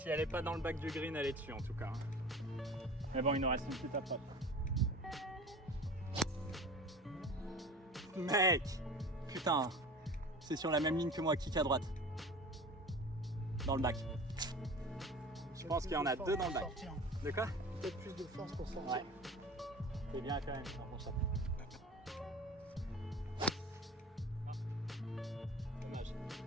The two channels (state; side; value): normal; both; correlation 0.38